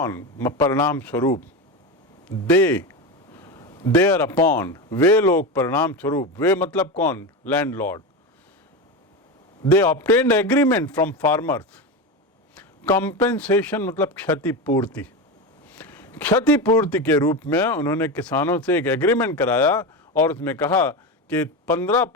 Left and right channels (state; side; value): normal; both; correlation 0.19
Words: परिणाम स्वरूप, देयर अपॉन वे लोग परिणाम स्वरूप, वे मतलब कौन? Landlord. They obtained agreement from farmers, compensation मतलब क्षतिपूर्ति, क्षतिपूर्ति के रूप में उन्होंने किसानों से एक एग्रीमेंट कराया और उसमें कहा कि